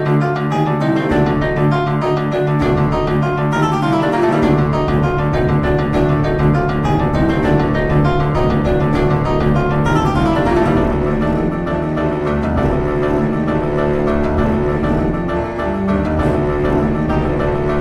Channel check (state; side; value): identical; both; correlation 1.00